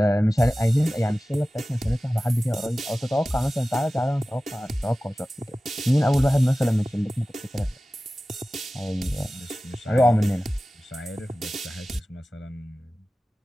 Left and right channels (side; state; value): both; normal; correlation 0.96